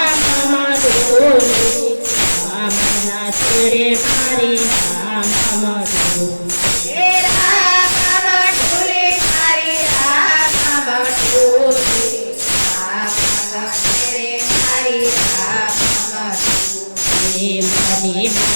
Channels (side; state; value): both; inverted; correlation -1.00